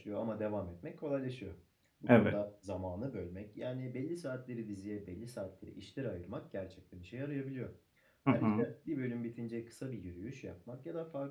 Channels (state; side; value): identical; both; correlation 1.00